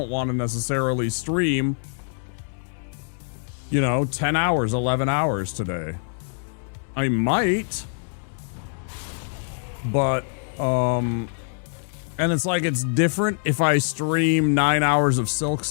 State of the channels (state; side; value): silent; right; 62 dB below the other